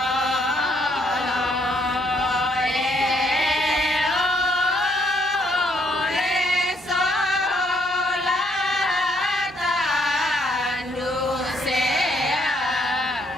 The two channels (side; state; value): both; normal; correlation 0.70